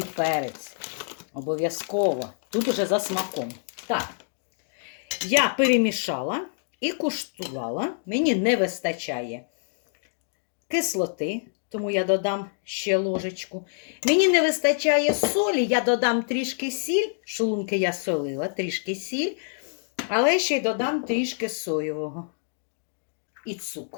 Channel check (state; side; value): silent; right; digital silence